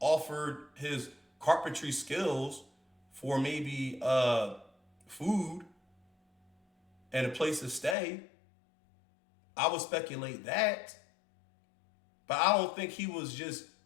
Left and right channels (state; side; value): drops out; right; at 8.0 s